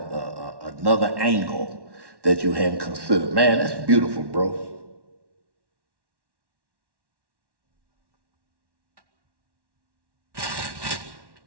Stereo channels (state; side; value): late; left; 1.1 ms